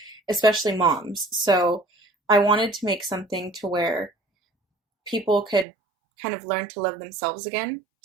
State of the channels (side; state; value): left; drops out; at 5.7 s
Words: especially moms. So I wanted to make something to where people could kind of learn to love themselves again,